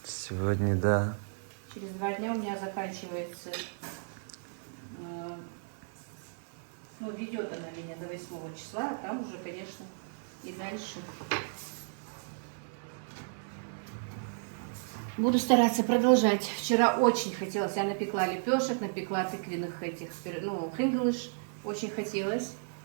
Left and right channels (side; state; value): left; silent; digital silence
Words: Сегодня, да. Через 2 дня у меня заканчивается, ну, ведет она меня до 8 числа, а там уже, конечно, и дальше. Буду стараться продолжать. Вчера очень хотелось. Я напекла лепешек, напекла тыквенных этих, ну, хринглыш. Очень хотелось.